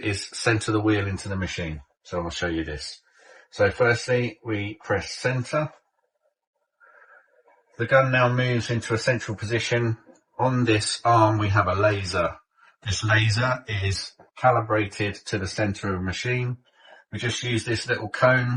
is center the wheel into the machine. So I'll show you this. So firstly, we press center. The gun now moves into a central position. On this arm, we have a laser. This laser is calibrated to the center of the machine. We just use this little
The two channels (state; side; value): identical; both; correlation 1.00